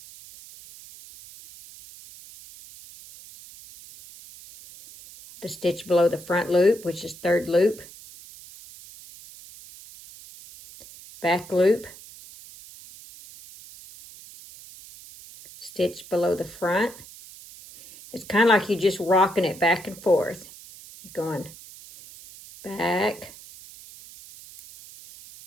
the stitch below the front loop, which is third loop, back loop, stitch below the front. It's kind of like you're just rocking it back and forth. You're going back,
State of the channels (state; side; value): noise; right; hiss, 18 dB below the sound